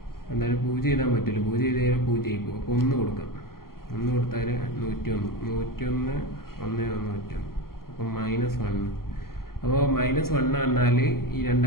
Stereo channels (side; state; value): right; late; 0.93 ms